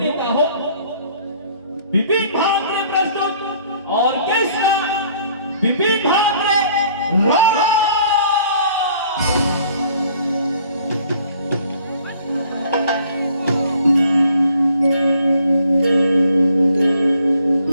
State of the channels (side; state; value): both; inverted; correlation -0.59